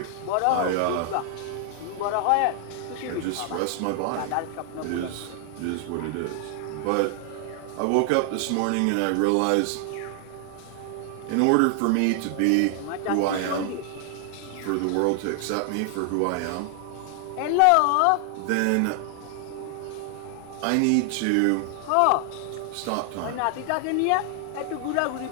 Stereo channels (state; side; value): different; both; correlation 0.00